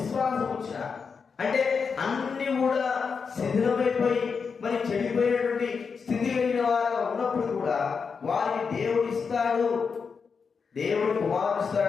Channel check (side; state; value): right; quieter; 5.6 dB